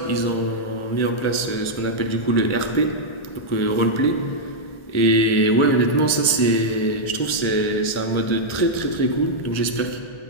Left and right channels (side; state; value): right; late; 1.4 ms